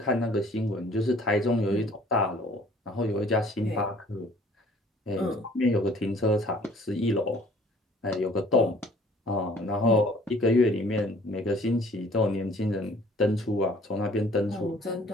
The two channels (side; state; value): both; normal; correlation 0.55